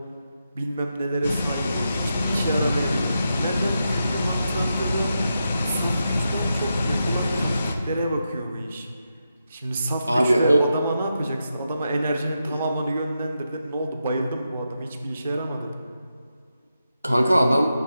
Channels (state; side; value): inverted; both; correlation -0.87